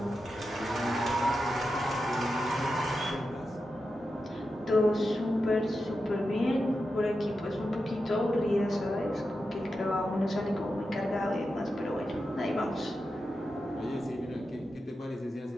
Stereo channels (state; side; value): normal; both; correlation 0.90